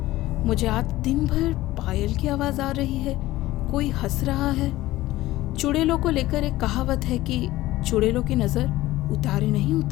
मुझे आज दिन भर पायल की आवाज़ आ रही है, कोई हंस रहा है। चुड़ैलों को लेकर एक कहावत है कि चुड़ैलों की नज़र उतारे नहीं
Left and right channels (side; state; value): right; quieter; 16.8 dB